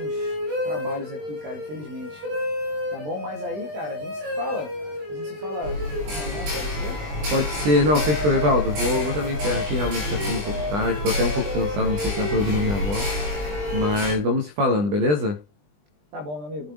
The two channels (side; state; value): left; late; 20 ms